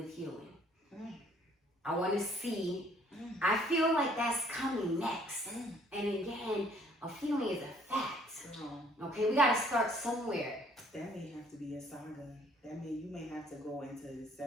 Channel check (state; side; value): normal; both; correlation 0.61